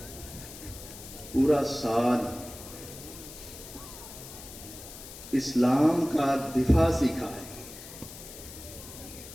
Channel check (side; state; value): left; noise; hiss, 14 dB below the sound